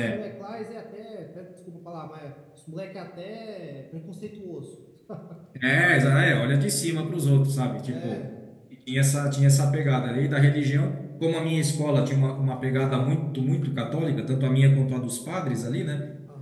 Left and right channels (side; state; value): both; identical; correlation 1.00